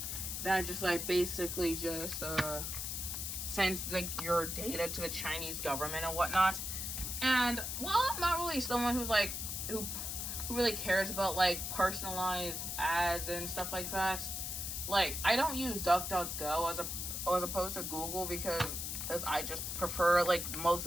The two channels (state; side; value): noise; left; hiss, 4 dB below the sound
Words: that just like basically just sends like your data to the Chinese government and whatnot. And while I'm not really someone who's like who really cares about like personalized ads and stuff like that, like I don't use DuckDuckGo as opposed to Google, because I just prefer like most